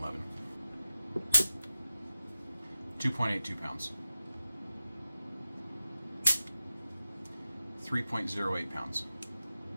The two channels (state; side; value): inverted; both; correlation -0.93